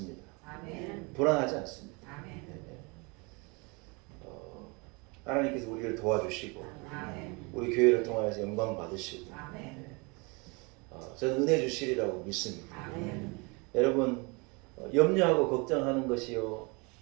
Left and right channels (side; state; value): left; quieter; 29.3 dB